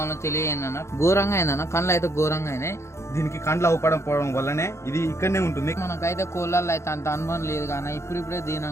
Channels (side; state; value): right; late; 0.13 ms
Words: తెలియజేయండి అన్న. ఘోరంగా అయిందన్న, కళ్ళు అయితే ఘోరంగా అయినాయి. దీనికి కండ్లు అవపడకపోవడం వల్లనే ఇది ఇక్కడనే ఉంటుంది. మనకైతే కోళ్ళల్లో అయితే అంత అనుభవం లేదు కానీ ఇప్పుడిప్పుడే